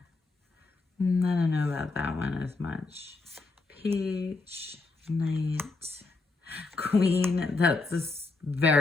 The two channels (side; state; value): right; quieter; 3.6 dB